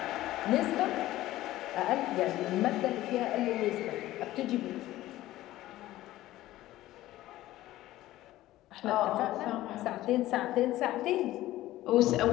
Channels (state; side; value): quieter; right; 15.6 dB